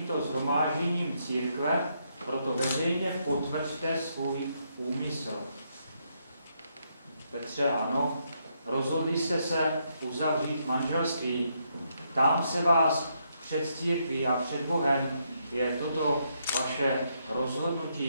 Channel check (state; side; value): inverted; both; correlation -0.77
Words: shromážděním církve proto veřejně potvrďte svůj úmysl. Petře, ano, rozhodli jste se uzavřít manželství. Ptám se vás před církví a před Bohem, je toto vaše